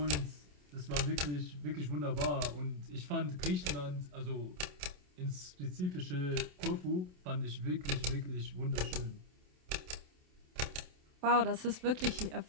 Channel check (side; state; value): left; late; 27 ms